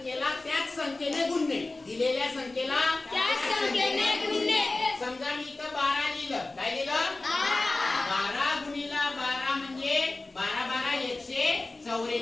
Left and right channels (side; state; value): right; quieter; 3.1 dB